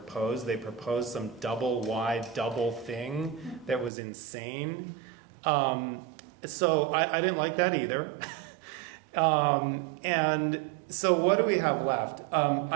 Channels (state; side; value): drops out; left; at 3.9 s